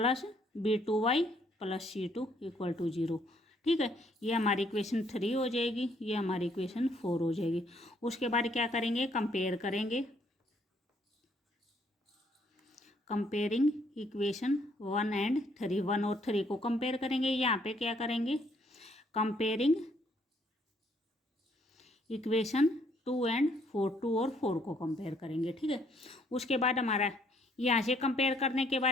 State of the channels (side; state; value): both; normal; correlation 0.67